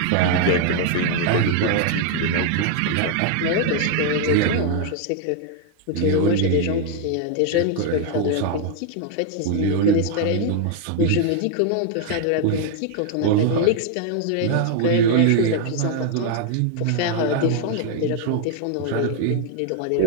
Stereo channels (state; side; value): different; both; correlation 0.00